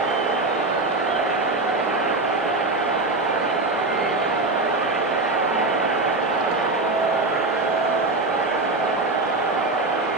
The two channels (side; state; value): left; quieter; 3.2 dB